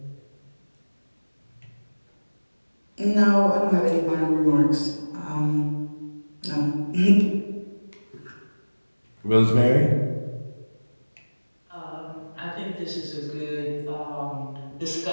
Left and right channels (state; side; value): inverted; both; correlation -1.00